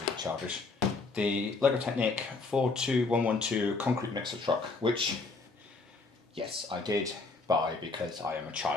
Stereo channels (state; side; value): quieter; right; 3.9 dB